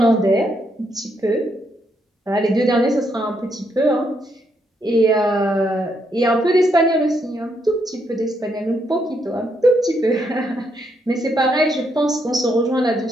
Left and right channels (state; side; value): normal; both; correlation 0.76